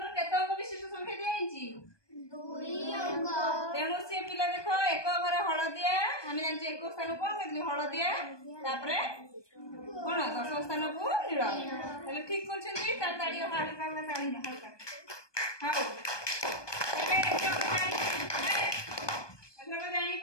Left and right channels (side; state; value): right; late; 1.2 ms